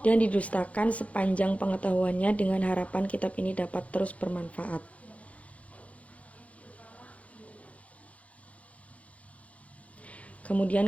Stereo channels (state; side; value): late; right; 0.066 ms